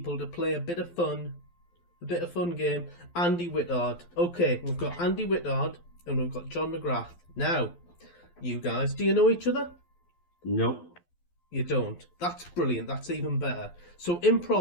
to play a bit of fun game. Andy Whittard. Okay, we've got Andy Whittard and we've got John McGrath. Now, you guys, do you know each other? Nope. You don't. That's brilliant. That's even better. So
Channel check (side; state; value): right; late; 12 ms